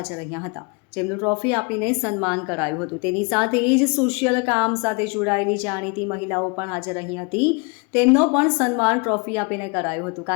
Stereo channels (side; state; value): right; quieter; 32.0 dB